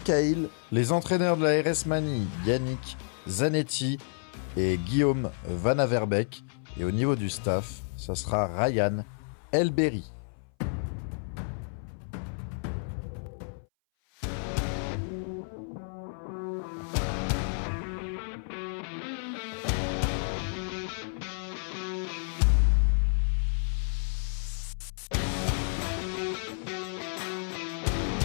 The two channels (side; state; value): right; silent; 58 dB below the other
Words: Les entraîneurs de la RS Mani, Yannick Zanetti et Guillaume Van Averbeek. Et au niveau du staff, ça sera Ryan Elberry.